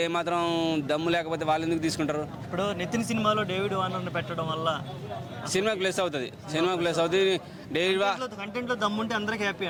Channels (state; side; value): identical; both; correlation 1.00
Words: ఏమాత్రం దమ్ము లేకపోతే వాళ్ళు ఎందుకు తీసుకుంటారు? ఇప్పుడు నితిన్ సినిమాలో డేవిడ్ వార్నర్ని పెట్టడం వల్ల సినిమాకి ప్లస్ అవుతుంది. డేవిడ్ కంటెంట్లో దమ్ముంటే అందరికి హ్యాపీ